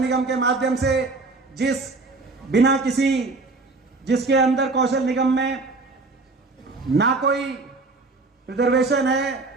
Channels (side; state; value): left; quieter; 3.6 dB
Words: के माध्यम से जिसके अंदर कौशल निगम में ना कोई रिजर्वेशन है,